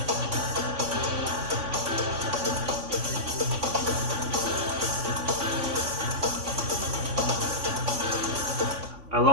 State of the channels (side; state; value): left; late; 3.5 ms